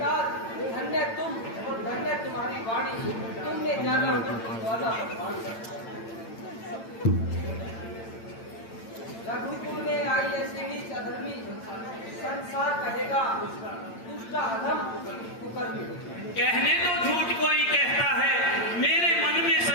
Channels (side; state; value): right; late; 8.9 ms